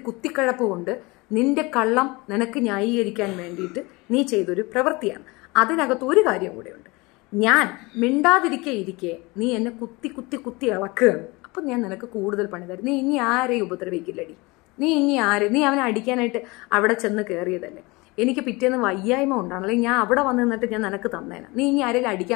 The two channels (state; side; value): quieter; right; 24.5 dB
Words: കുത്തിക്കഴപ്പ് കൊണ്ട് നിന്റെ കള്ളം നിനക്ക് ന്യായീകരിക്കാൻ വേണ്ടിയിട്ട് നീ ചെയ്തൊരു പ്രവൃത്തിയാണ്. അതിനകത്ത് ഒരു കാര്യം കൂടെയുണ്ട്. ഞാൻ മിണ്ടാതിരിക്കെ നീ എന്നെ കുത്തി ഇളക്കുകയാണ്. അപ്പം ഞാൻ നിനക്ക് കൂടുതൽ പണി തരും. നീ ഇനി ആരെയും ഉപദ്രവിക്കില്ലടി. നീ അവനെ അടിക്കാനായിട്ട് അവിടെ ചെന്ന് കയറിയതല്ലേ. എനിക്ക് പിറ്റേന്ന് വയ്യായ്മ ഉണ്ടാണ്, അല്ലെങ്കിൽ ഞാൻ അവിടെ വന്ന് നിന്നിട്ട് ഞാൻ നിനക്ക് തന്നേനെ. നീ ഇനി ആരെങ്കിലും